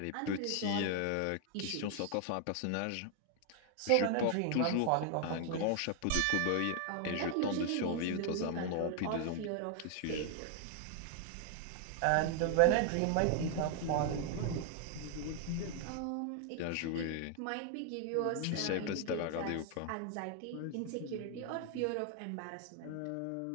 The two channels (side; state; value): both; different; correlation 0.00